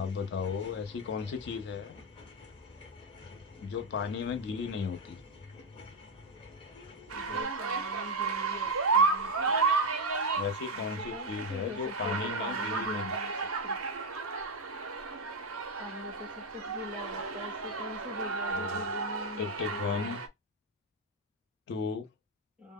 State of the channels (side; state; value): both; normal; correlation 0.05